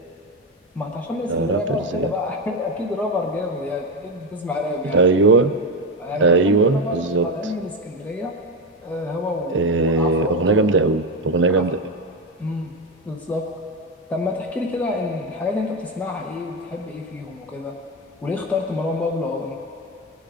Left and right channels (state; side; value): normal; both; correlation 0.13